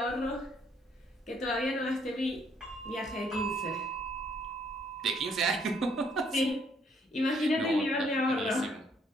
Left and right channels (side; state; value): both; normal; correlation 0.67